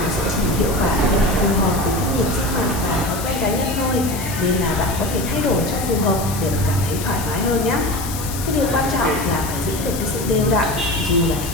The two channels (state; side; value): noise; left; hiss, 9 dB below the sound